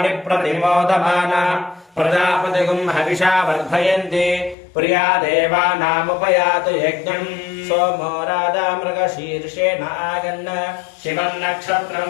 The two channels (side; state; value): right; drops out; at 4.5 s